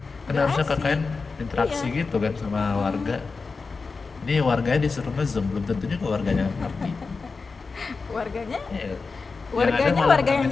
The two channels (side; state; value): right; quieter; 4.4 dB